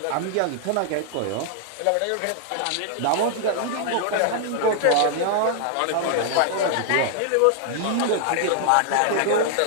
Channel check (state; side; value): different; both; correlation -0.01